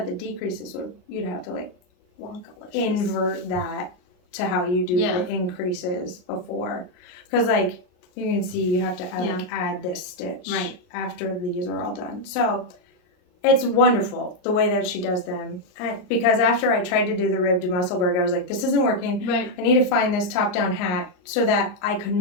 the decreases you'd have to, like, invert that to how you do the increases before. Because, like, you can see you have to add this stitch after these are all done. So it's wonderful the way that she does them. Because after I tried to do the ribbed Musselburgh, I was like, this isn't working. Right. I need to find this top-down hat so that I could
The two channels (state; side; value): late; right; 39 ms